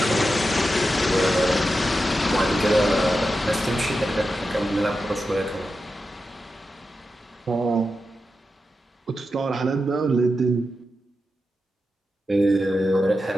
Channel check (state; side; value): normal; both; correlation 0.90